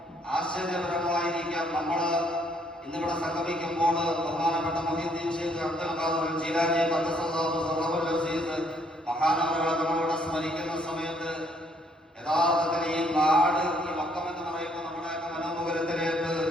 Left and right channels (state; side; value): normal; both; correlation 0.67